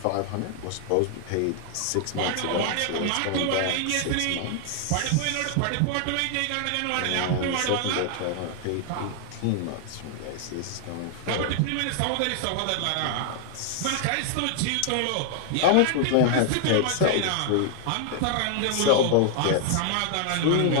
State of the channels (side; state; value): both; different; correlation 0.00